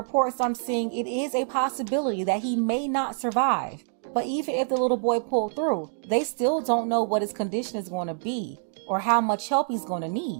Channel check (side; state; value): left; silent; digital silence